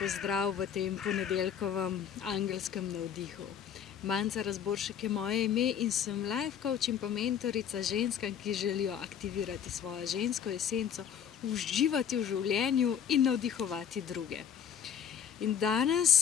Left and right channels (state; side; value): quieter; right; 8.5 dB